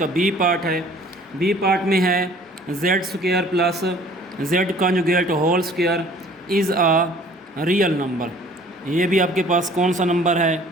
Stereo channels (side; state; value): both; normal; correlation 0.52